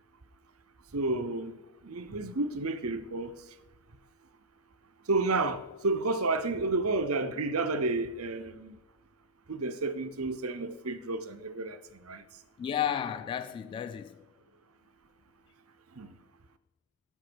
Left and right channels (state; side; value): normal; both; correlation -0.17